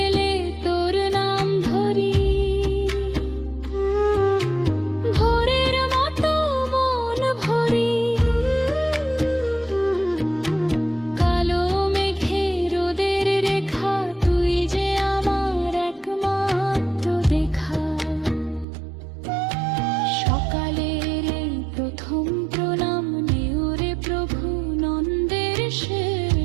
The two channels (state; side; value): drops out; left; at 18.7 s